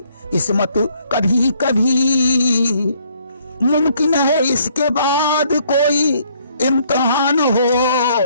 किस्मत कभी कभी। मुमकिन है इसके बाद कोई इम्तिहान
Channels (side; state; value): both; inverted; correlation -0.66